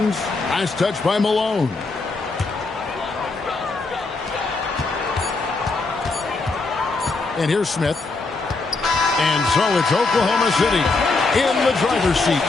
Nice touch by Malone. And here's Smith. And so it's Oklahoma City in the driver's seat,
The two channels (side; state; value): right; quieter; 3.7 dB